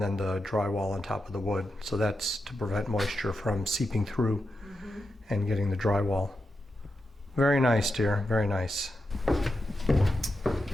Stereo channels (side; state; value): both; normal; correlation 0.88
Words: then the drywall on top of the wood. So that's to prevent moisture from seeping through and getting the drywall. Very nice, dear. Very nice.